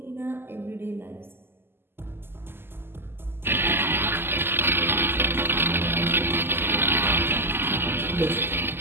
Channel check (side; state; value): left; late; 0.11 ms